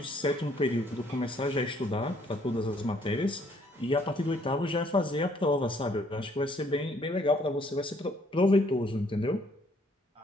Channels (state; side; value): normal; both; correlation 0.65